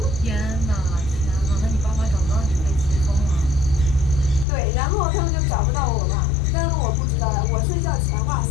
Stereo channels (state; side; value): drops out; right; at 4.5 s